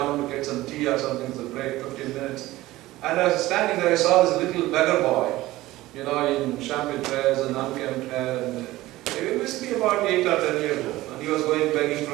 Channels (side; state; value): left; quieter; 17.4 dB